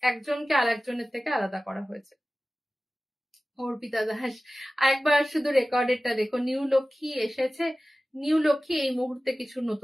একজনকে আরেকজনের থেকে আলাদা করা হয়েছে। অর্পিতা দাস, আরেকবার শুধু রেকর্ডেরটা দেখো, নিউ লক্ষ্মী এসেছে। নিউ লক্ষ্মী এই মুহূর্তে কিছু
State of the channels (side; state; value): both; normal; correlation 0.96